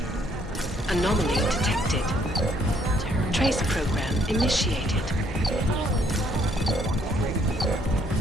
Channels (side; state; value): both; normal; correlation 0.67